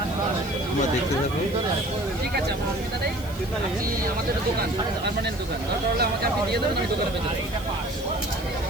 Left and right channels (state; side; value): noise; right; hiss, 19 dB below the sound